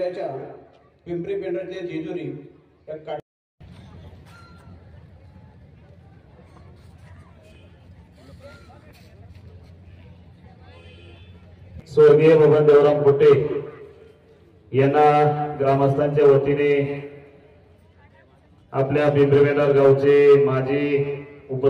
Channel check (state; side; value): identical; both; correlation 1.00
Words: पिंपरी पेंढारच्या जेजुरी या स्वर्गीय बबन देवराम कुटे यांना ग्रामस्थांच्या वतीने आपल्या पिंपरी पेंढार गावचे माजी